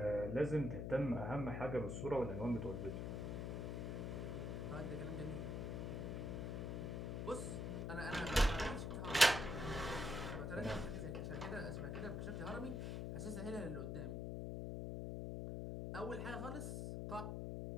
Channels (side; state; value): left; noise; hum, 2 dB below the sound